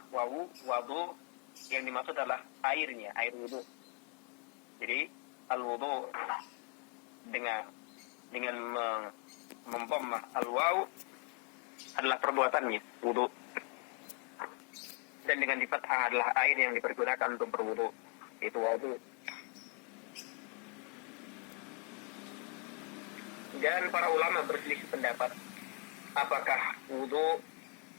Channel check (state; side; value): quieter; right; 39.4 dB